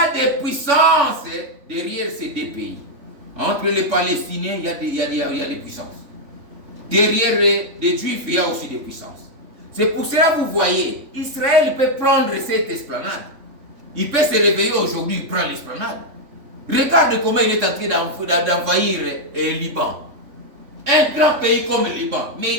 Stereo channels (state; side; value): late; left; 3.5 ms